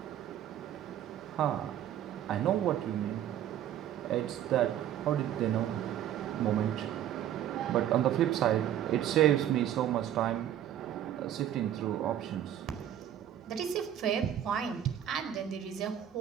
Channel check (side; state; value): left; quieter; 10.9 dB